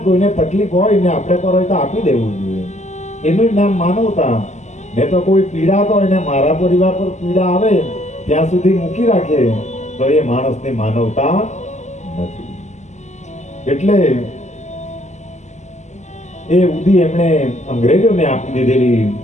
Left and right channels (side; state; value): right; late; 0.34 ms